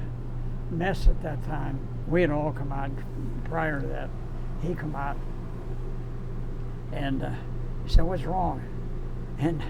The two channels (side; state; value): both; identical; correlation 1.00